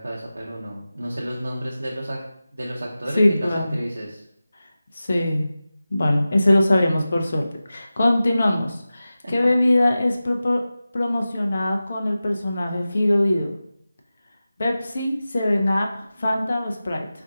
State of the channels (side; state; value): both; inverted; correlation -0.95